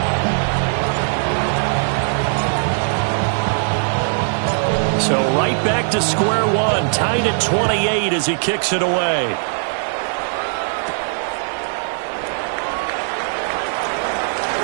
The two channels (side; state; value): left; silent; 66 dB below the other